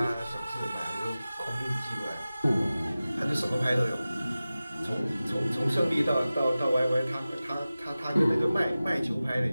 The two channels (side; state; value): both; inverted; correlation -0.96